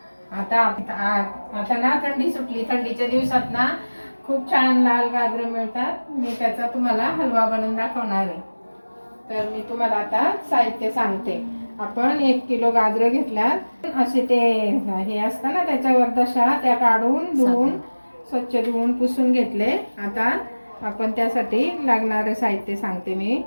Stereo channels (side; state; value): both; inverted; correlation -1.00